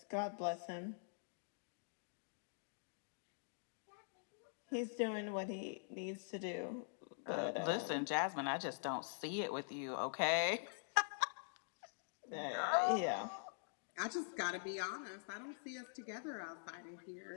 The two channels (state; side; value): silent; right; digital silence